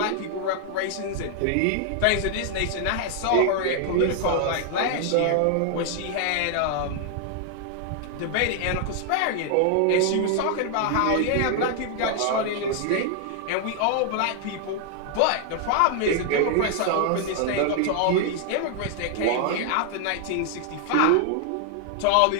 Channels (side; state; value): both; different; correlation 0.00